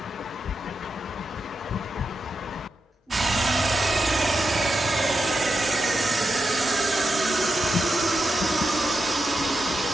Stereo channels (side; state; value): both; normal; correlation 0.88